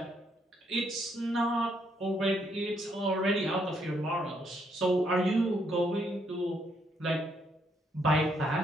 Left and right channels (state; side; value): normal; both; correlation 0.73